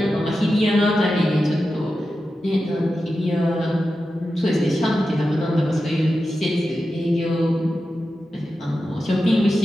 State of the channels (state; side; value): normal; both; correlation 0.91